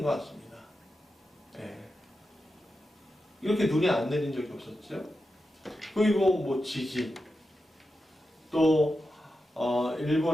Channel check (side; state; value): both; normal; correlation 0.90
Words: 것 같습니다. 네. 이렇게 눈이 안 내린 적이 없었죠. 그리고 뭐 지진, 또